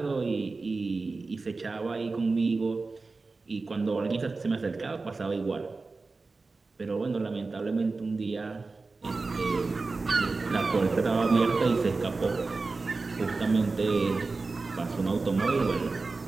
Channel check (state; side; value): quieter; left; 3.8 dB